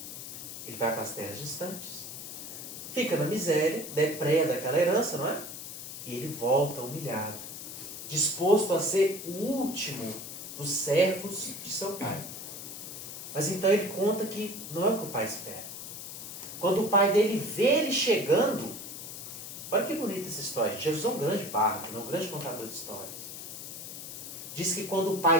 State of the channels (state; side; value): noise; left; hiss, 9 dB below the sound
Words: fica na miséria, depreda aquela herança, não é? E ele volta humilhado, disposto a ser o último dos servos de seu pai. Mas então ele conta que não é o que o pai espera. Quando o pai dele vê ele chegando, olha que bonita essa história. Jesus é um grande bárbaro, um grande contador de histórias. Diz que quando o